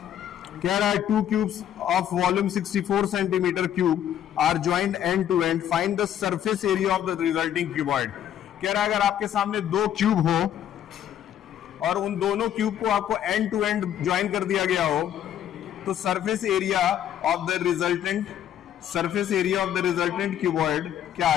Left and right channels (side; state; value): right; quieter; 10.5 dB